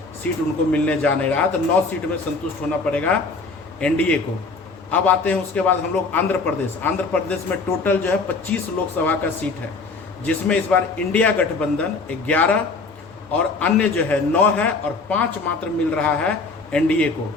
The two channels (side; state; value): right; quieter; 4.0 dB